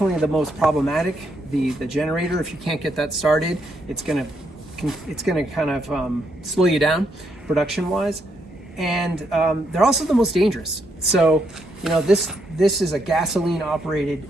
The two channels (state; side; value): normal; both; correlation 0.76